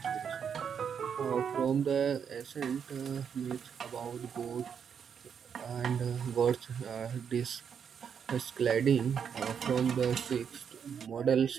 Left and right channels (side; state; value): left; quieter; 7.3 dB